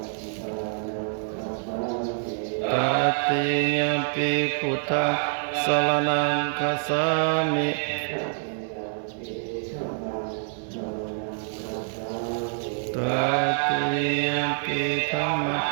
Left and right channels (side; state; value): left; silent; digital silence